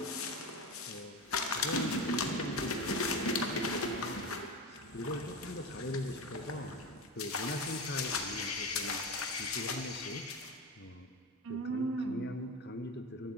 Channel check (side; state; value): both; normal; correlation 0.23